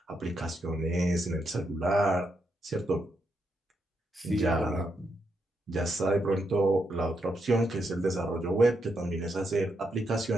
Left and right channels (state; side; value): normal; both; correlation 0.81